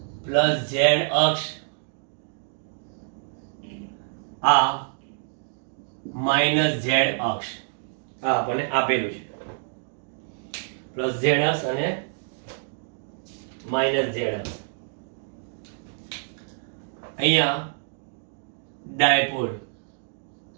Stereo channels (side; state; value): left; silent; digital silence